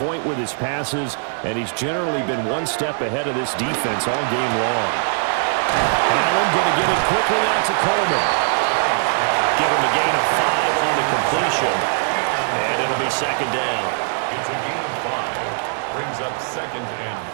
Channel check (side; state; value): left; silent; 65 dB below the other